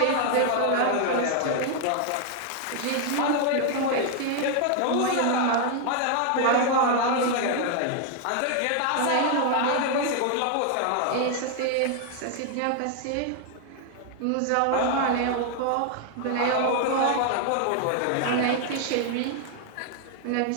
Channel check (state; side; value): different; both; correlation 0.00